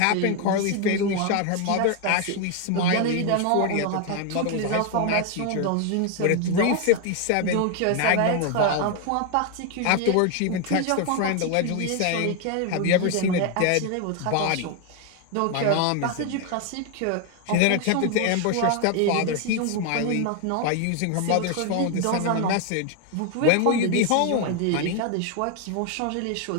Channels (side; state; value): both; different; correlation 0.01